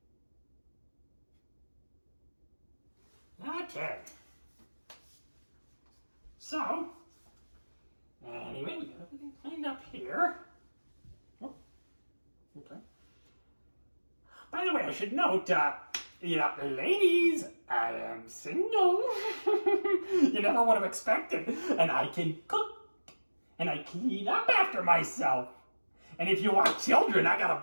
Okay. So, anyway, we got everything cleaned up here. Oh, okay. By the way, I should note, ladies, I am single. You never would have expected. And I can cook. And I clean up after myself. And if you want children, I got a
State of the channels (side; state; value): both; inverted; correlation -1.00